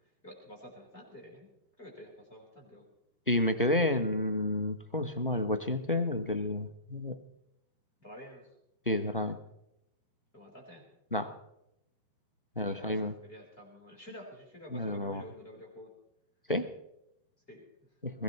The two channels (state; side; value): inverted; both; correlation -0.31